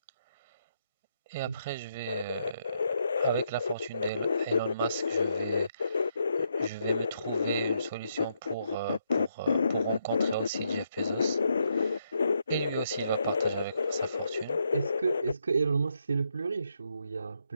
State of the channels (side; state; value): both; inverted; correlation -0.77